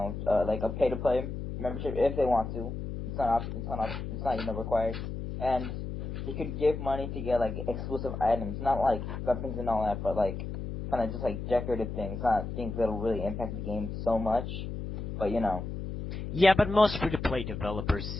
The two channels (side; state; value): left; noise; hum, 6 dB below the sound